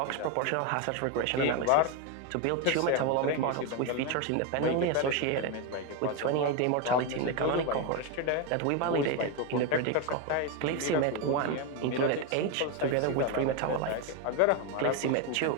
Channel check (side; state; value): both; different; correlation 0.02